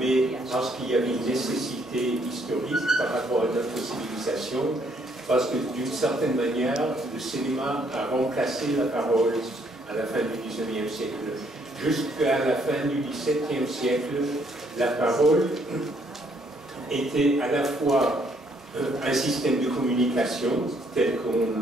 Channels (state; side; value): normal; both; correlation 0.68